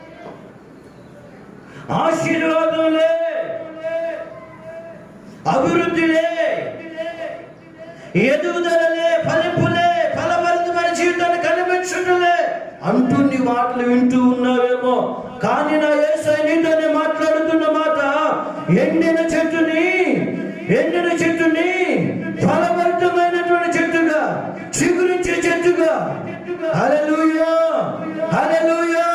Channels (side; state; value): both; identical; correlation 1.00